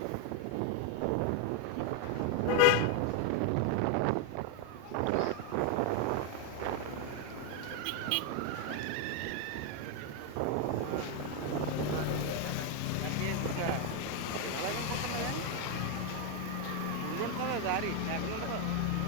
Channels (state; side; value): different; both; correlation 0.01